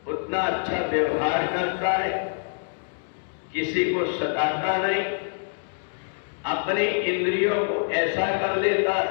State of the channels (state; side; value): silent; right; digital silence